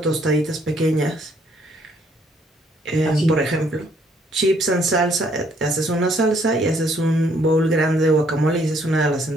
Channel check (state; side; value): normal; both; correlation 0.67